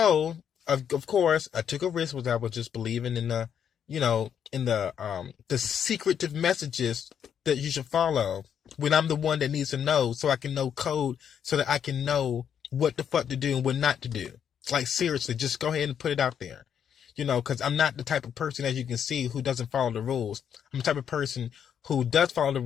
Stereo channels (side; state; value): right; quieter; 8.4 dB